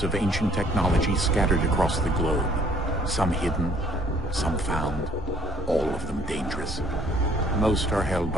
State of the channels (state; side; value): normal; both; correlation 0.59